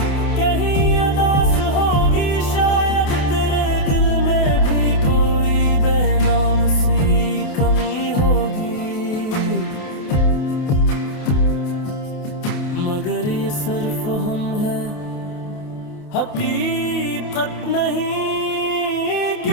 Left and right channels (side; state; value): right; late; 28 ms